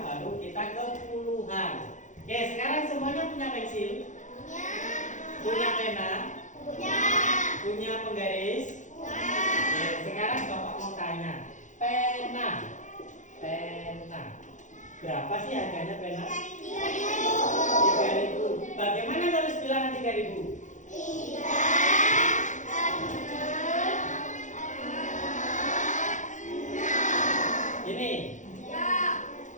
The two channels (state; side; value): late; right; 0.36 ms